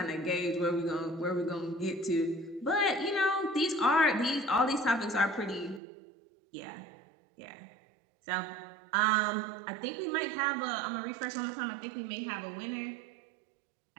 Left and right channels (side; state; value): left; drops out; at 5.8 s